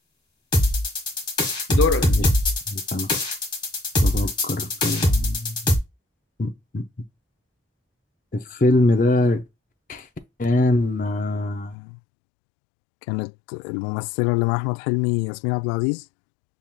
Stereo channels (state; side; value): drops out; right; at 11.8 s